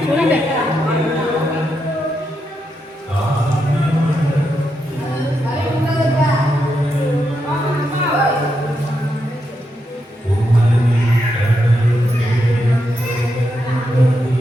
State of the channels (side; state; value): both; normal; correlation 0.83